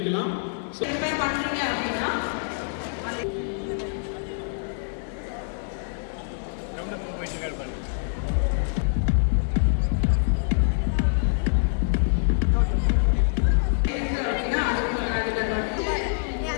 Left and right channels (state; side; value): silent; right; 60 dB below the other